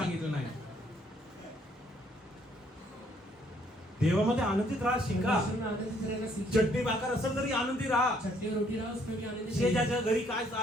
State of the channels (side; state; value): both; normal; correlation 0.66